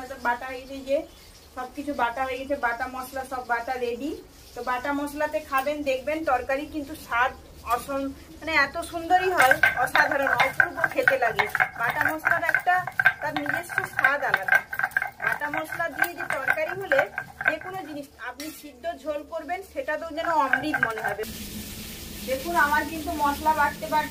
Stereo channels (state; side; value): identical; both; correlation 1.00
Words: বাটা হয়ে যায়। যে সবকিছু বাটা হয়ে গেছে, বাটা মশলা সব বাটা রেডি। তো বাটা মশলাতে খাবেন, দেখবেন তরকারি কিন্তু স্বাদ মানে এত সুন্দরই হয়, অসাধারণ, অপূর্ব খেতে লাগে। বাটা মশলার একটা তার নিজস্ব স্বাদ আলাদা। বাটা মশলা দিয়ে যে তরকারি হলে যে কোনো জিনিস আপনি সিদ্ধ ঝোল করবেন, সেটাতেও যেন অমৃত মনে হবে। দেখুন আমার কিন্তু মশলা বাটতে